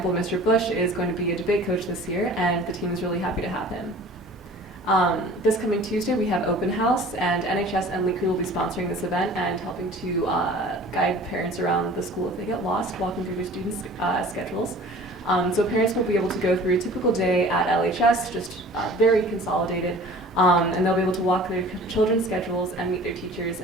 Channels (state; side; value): normal; both; correlation 0.45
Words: Mr. Bush is going to be a debate coach this year, and the team is really happy to have him. This coming Tuesday, we have open house, and NHS and Lake Crew will be sponsoring this event and helping to guide parents around the school if they get lost, walking through their students' schedules. So parents will be able to go through a typical day at LHS, just very consolidated, and they'll be able to walk their children's schedules and meet their teachers